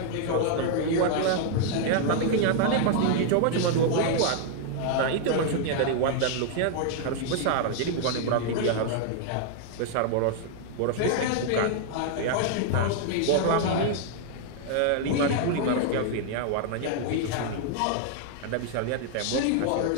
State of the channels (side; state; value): both; different; correlation 0.00